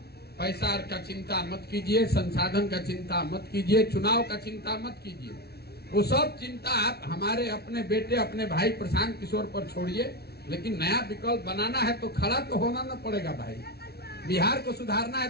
पैसा का चिंता मत कीजिए, संसाधन का चिंता मत कीजिए, चुनाव का चिंता मत कीजिए। वो सब चिंता आप हमारे अपने बेटे, अपने भाई प्रशांत किशोर पर छोड़िए। लेकिन नया विकल्प बनाना है तो खड़ा तो होना न पड़ेगा भाई। बिहार को सुधारना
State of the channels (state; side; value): late; right; 0.46 ms